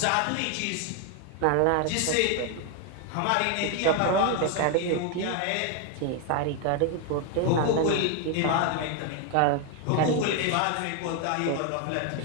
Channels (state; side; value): different; both; correlation 0.01